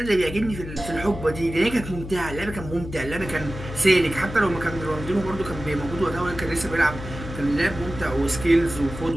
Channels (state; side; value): noise; left; hum, 10 dB below the sound